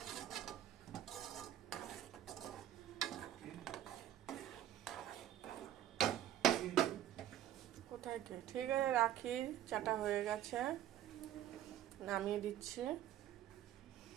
কোথায় কে? ঠিক আছে, রাখি। চাটা হয়ে গেছে, নামিয়ে দিচ্ছি।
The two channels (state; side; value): quieter; left; 11.8 dB